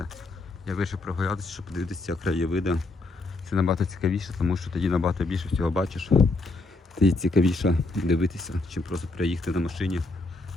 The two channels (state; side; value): quieter; right; 3.2 dB